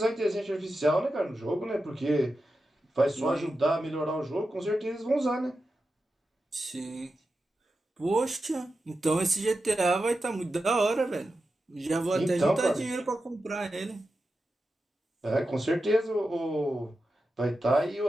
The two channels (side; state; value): both; normal; correlation 0.91